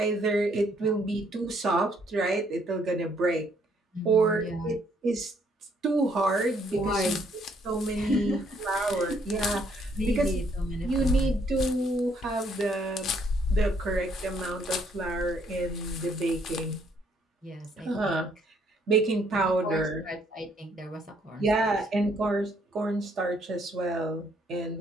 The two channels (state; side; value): normal; both; correlation 0.68